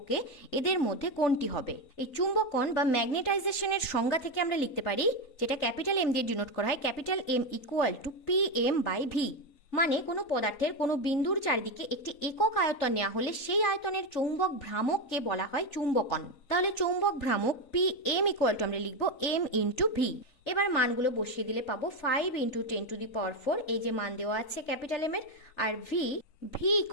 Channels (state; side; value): late; right; 3.9 ms